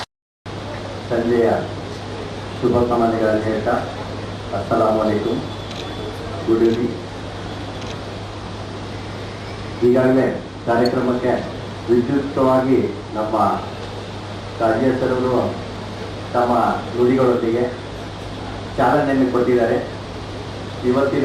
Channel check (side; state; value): both; identical; correlation 1.00